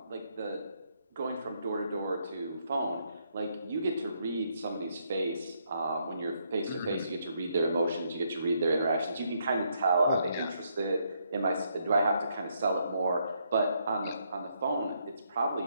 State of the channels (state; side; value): inverted; both; correlation -0.75